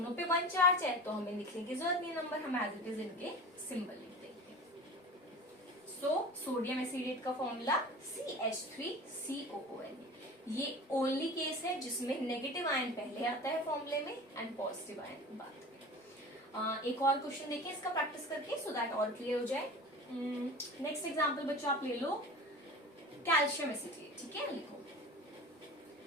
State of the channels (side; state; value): both; normal; correlation 0.35